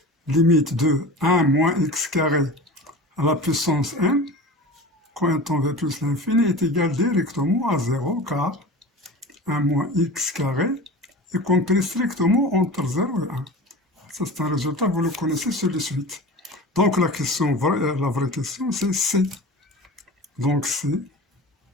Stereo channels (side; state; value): both; normal; correlation 0.34